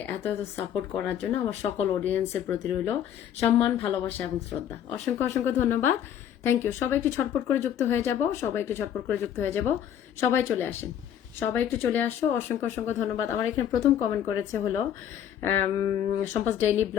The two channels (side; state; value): right; quieter; 9.9 dB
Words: এত এত সাপোর্ট করার জন্য আমার সকল অডিয়েন্সের প্রতি রইল সম্মান, ভালোবাসা এবং শ্রদ্ধা। অসংখ্য অসংখ্য ধন্যবাদ। Thank you. সবাই একটু ছটপট করে যুক্ত হয়ে যাব, সবাই একটু ছটপট করে যুক্ত হয়ে যাব। সবাই চলে আসেন, সবাই একটু চলে আসো। অসংখ্য অসংখ্য ধন্যবাদ। আমার এখানে প্রথম কমেন্ট করেছে হলো সম্পাস ডেইলি